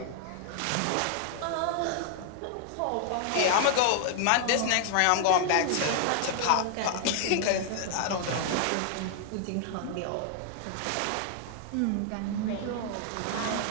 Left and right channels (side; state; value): both; different; correlation 0.00